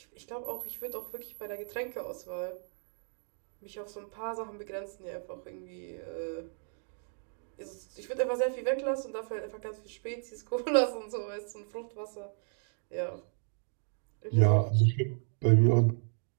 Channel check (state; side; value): silent; left; digital silence